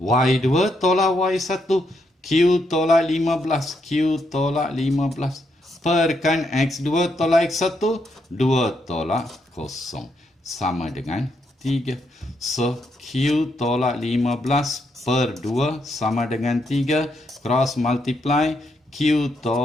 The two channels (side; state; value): both; normal; correlation 0.78